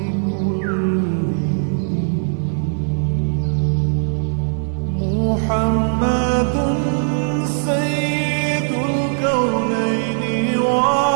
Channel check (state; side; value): silent; left; digital silence